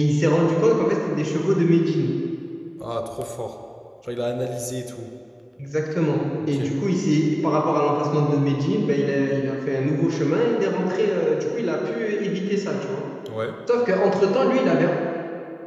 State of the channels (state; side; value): identical; both; correlation 1.00